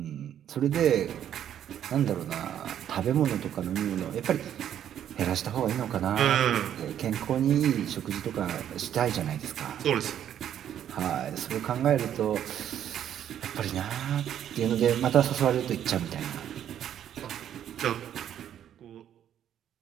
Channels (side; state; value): left; quieter; 10.2 dB